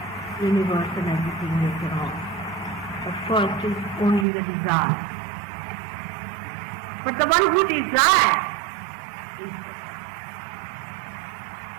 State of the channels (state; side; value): drops out; left; at 4.2 s